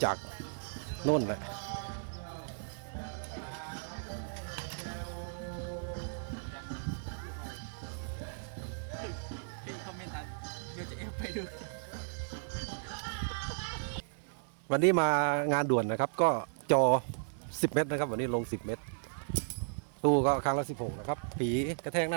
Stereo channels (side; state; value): left; silent; 54 dB below the other